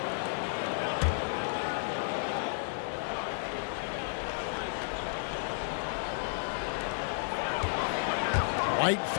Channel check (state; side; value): silent; right; digital silence